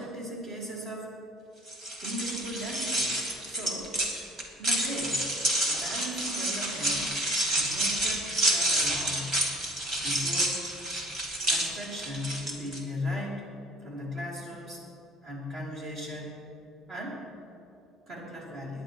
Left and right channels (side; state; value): both; normal; correlation 0.53